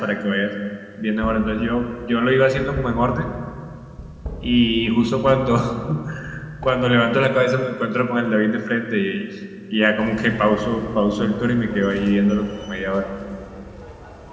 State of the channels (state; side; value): identical; both; correlation 1.00